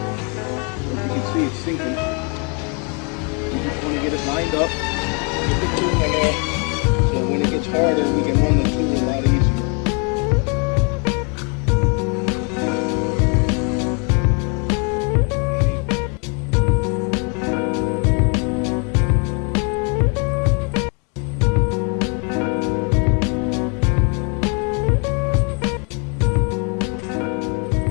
See it's sinking. We just want to get it lined up, get the tool in there, so when it gets harder, we can run the tool a lot easier.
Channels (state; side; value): quieter; right; 35.5 dB